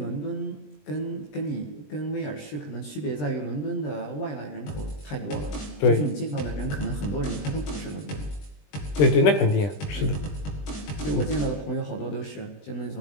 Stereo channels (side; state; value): right; late; 20 ms